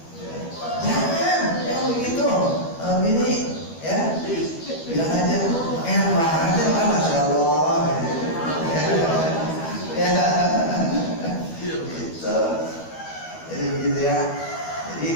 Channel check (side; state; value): right; late; 12 ms